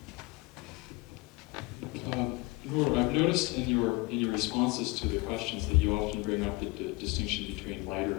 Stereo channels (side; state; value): right; quieter; 24.1 dB